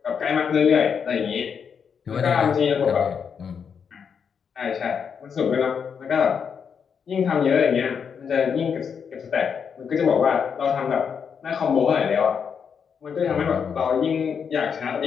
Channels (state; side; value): quieter; right; 6.8 dB